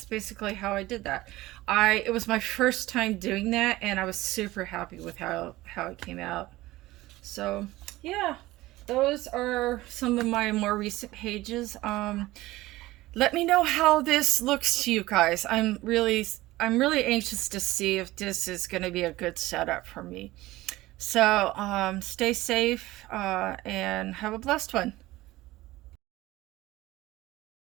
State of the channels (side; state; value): left; quieter; 18.1 dB